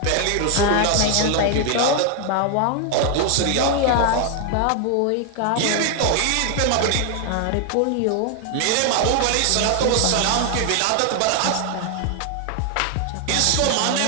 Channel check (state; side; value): different; both; correlation 0.00